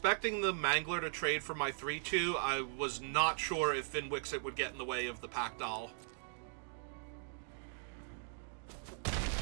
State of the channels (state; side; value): silent; left; digital silence